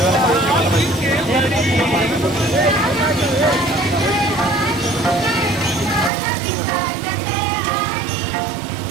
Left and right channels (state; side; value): drops out; left; at 6.1 s